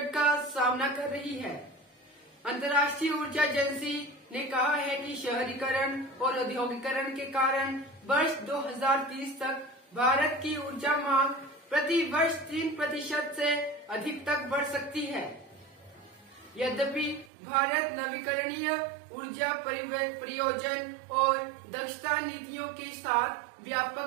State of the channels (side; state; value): left; drops out; at 17.3 s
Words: का सामना कर रही है, अंतर्राष्ट्रीय ऊर्जा एजेंसी ने कहा है कि शहरीकरण और औद्योगिकरण के कारण वर्ष 2030 तक भारत की ऊर्जा मांग प्रति वर्ष 3% से अधिक तक बढ़ सकती है। यद्यपि भारत नवीकरणीय ऊर्जा परियोजन और दक्षता नीतियों के साथ